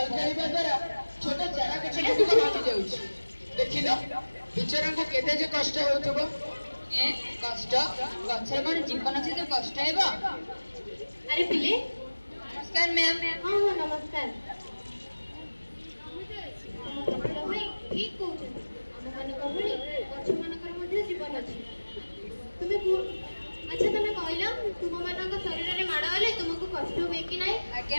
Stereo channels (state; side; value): inverted; both; correlation -1.00